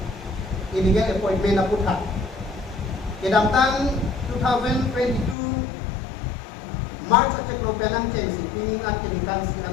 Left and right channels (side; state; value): right; drops out; at 5.4 s